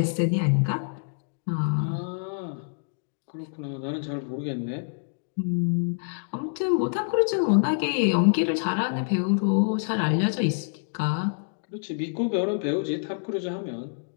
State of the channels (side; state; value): right; silent; digital silence